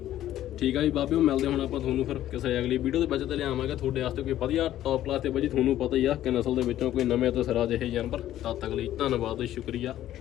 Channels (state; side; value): quieter; right; 12.8 dB